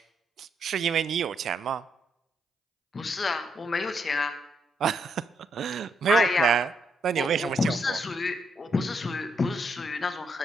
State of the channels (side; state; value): both; normal; correlation 0.77